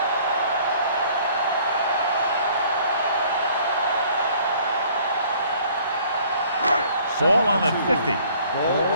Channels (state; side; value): inverted; both; correlation -0.56